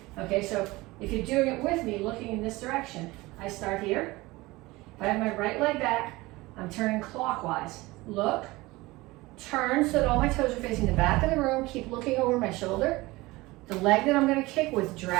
Okay, so if you're doing it with me, looking in this direction, I start here. If I have my right leg back, I'm turning clockwise. Look, turn so that all my toes are facing the back of the room. Keep looking over my shoulder. The leg that I'm going to kick with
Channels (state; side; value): quieter; left; 20.9 dB